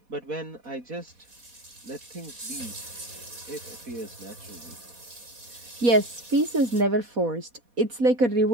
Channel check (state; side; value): late; left; 4.1 ms